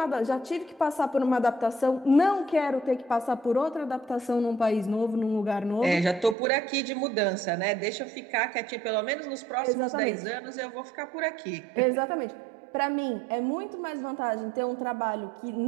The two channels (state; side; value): drops out; left; at 6.4 s